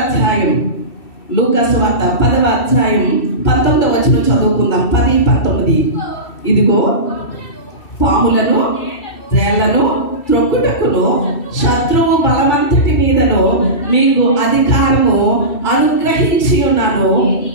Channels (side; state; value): right; late; 2.6 ms